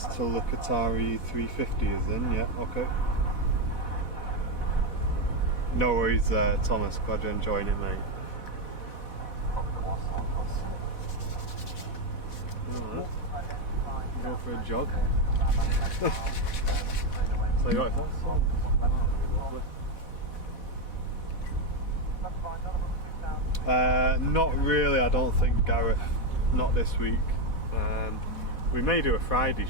till the Qatari 350 is in, yeah, okay. No worries, Thomas, glad you're enjoying it, mate. Alright, go for a jog. So you got it? Not really, I don't think, Gareth. Not this week. We may do a Friday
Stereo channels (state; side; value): late; right; 4.1 ms